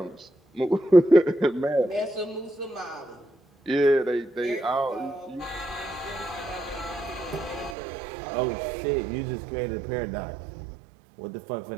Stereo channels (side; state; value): left; drops out; at 7.8 s